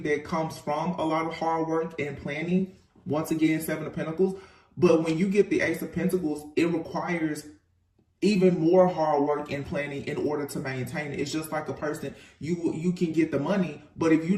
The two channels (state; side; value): identical; both; correlation 1.00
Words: comes from a lot of hard work and planning. Once again, Seven of Pentacles. But when you get the Ace of Pentacles, it requires even more hard work and planning in order to maintain it. It's just like a person, you can get the money, but if